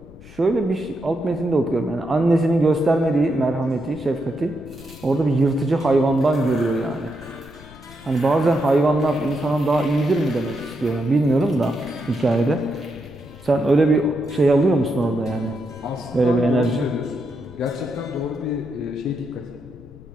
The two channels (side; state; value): left; noise; rumble, 20 dB below the sound